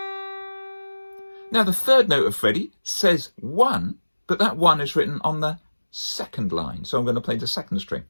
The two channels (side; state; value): both; inverted; correlation -1.00